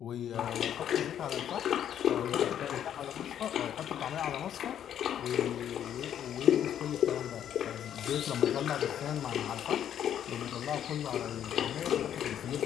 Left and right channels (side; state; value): right; quieter; 9.9 dB